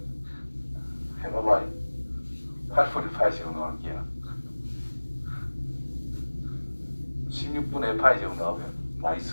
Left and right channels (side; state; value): both; inverted; correlation -1.00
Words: 해봐봐. 8분의 파이 제곱 나올게요. 16분의 파이 제곱 나오면 많이